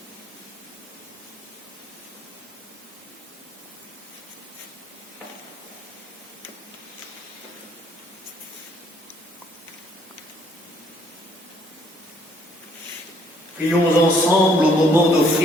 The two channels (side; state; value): both; normal; correlation 0.65